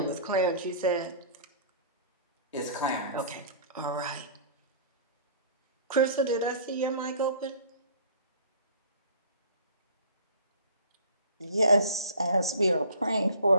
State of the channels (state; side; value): inverted; both; correlation -0.47